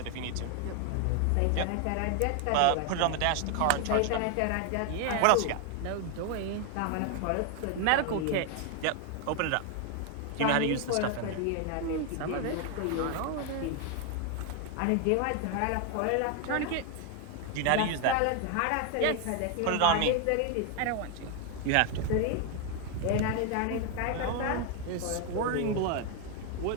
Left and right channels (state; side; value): different; both; correlation 0.01